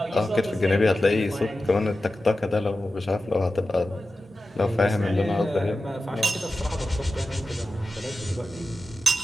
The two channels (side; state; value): both; normal; correlation 0.93